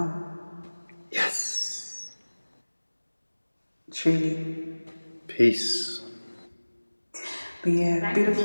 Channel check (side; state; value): both; inverted; correlation -1.00